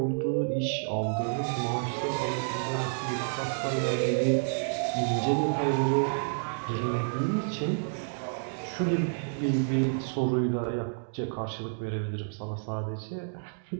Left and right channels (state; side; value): silent; left; digital silence